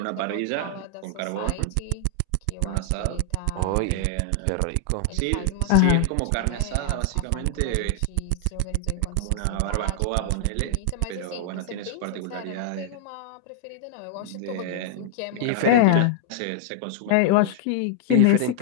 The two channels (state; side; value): different; both; correlation 0.00